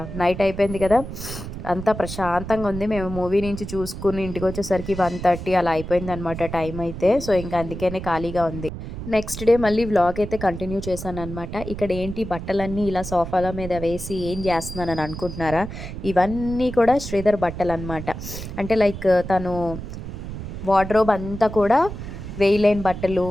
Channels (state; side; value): noise; right; rumble, 9 dB below the sound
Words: నైట్ అయిపోయింది కదా, అంతా ప్రశాంతంగా ఉంది. మేము మూవీ నుంచి చూసుకుని ఇంటికి వచ్చేసరికి 1:30 అలా అయిపోయింది అనమాట టైం అయితే. సో ఇంకా అందుకనే ఖాళీగా ఉంది. నెక్స్ట్ డే మళ్ళీ వ్లాగ్ అయితే కంటిన్యూ చేశాను అనమాట. ఇక్కడ ఏంటి బట్టలన్నీ ఇలా సోఫాల మీద వేసి ఏం చేస్తున్నానని అనుకుంటున్నారా? ఇవన్నీ కూడా శ్రీధర్ బట్టలు అనమాట. అంటే లైక్ తను వార్డ్రోబ్ అంతా కూడా వేయలేని బట్టలు,